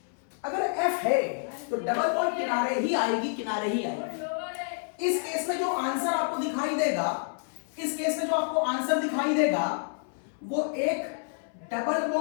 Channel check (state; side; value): silent; right; 59 dB below the other